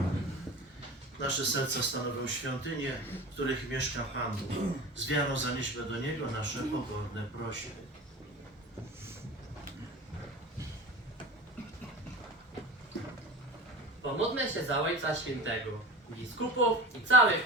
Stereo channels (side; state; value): both; normal; correlation 0.32